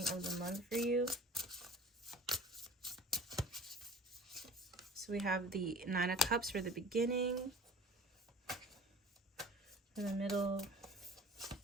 of the month for you. So we have the 9 of Cups for the beginning. For the middle,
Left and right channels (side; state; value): both; normal; correlation 0.45